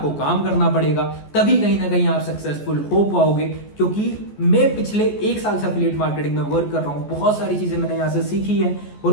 काम करना पड़ेगा, तभी कहीं ना कहीं आप सक्सेसफुल हो पाओगे। क्योंकि मैं पिछले 1 साल से एफिलिएट मार्केटिंग में वर्क कर रहा हूँ, बहुत सारी चीजें मैंने यहाँ से सीखी है और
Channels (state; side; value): late; right; 14 ms